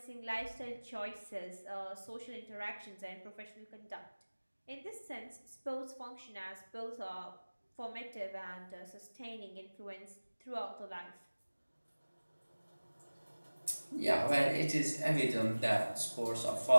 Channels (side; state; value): both; inverted; correlation -1.00